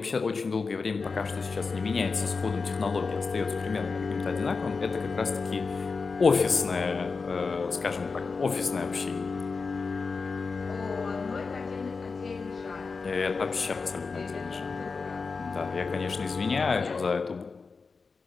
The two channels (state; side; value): quieter; right; 4.6 dB